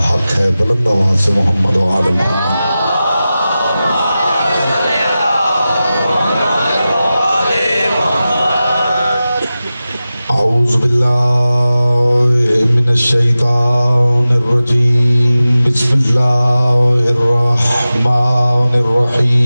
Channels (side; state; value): both; inverted; correlation -0.95